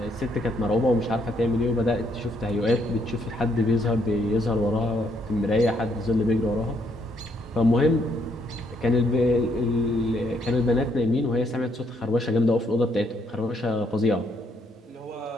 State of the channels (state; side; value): normal; both; correlation 0.71